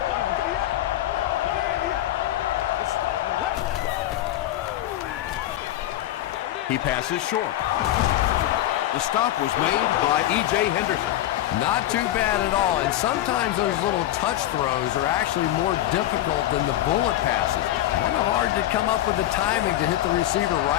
He passes short. The stop was made by E.J. Henderson. Not too bad at all, and sometimes those little touch throws are actually more difficult than the bullet passes. Kind of hard to come up with the timing to hit the receiver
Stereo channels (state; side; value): quieter; right; 13.7 dB